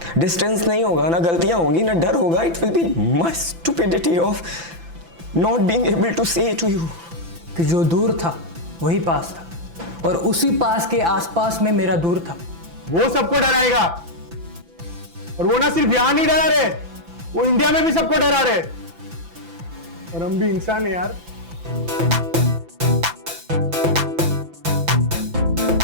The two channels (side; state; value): left; late; 5.9 ms